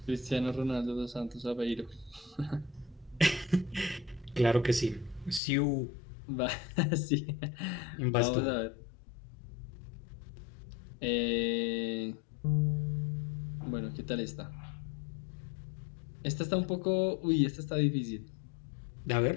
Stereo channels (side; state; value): right; drops out; at 5.4 s